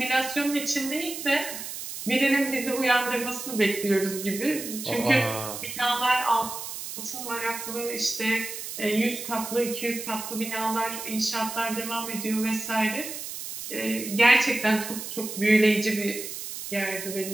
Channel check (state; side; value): noise; right; hiss, 8 dB below the sound